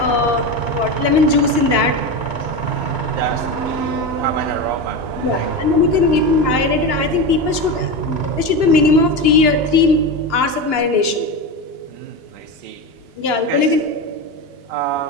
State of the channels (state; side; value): late; left; 2.9 ms